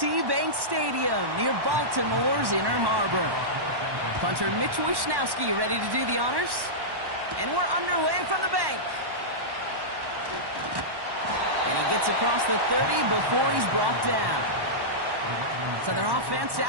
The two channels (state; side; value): late; left; 1.1 ms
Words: Bank Stadium near Baltimore's Inner Harbor. Punter Mitch Wishnowsky ready to do the honors. And we're underway from the bank. And he gets across the 30 before he's brought down. So their offense